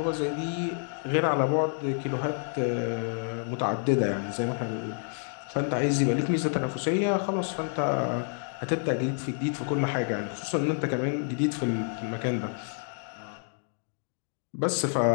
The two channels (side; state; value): right; silent; 57 dB below the other